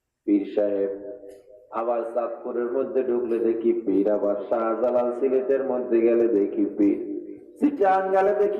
পীর সাহেব। আবার চাঁদপুরের মধ্যে ঢুকলে দেখি পীর, আবার শাহজালাল সিলেটের মধ্যে গেলে দেখি পীর, চিটাং গেলে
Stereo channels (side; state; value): both; identical; correlation 1.00